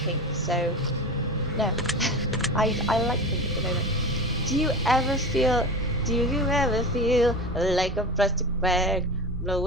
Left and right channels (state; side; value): normal; both; correlation 0.29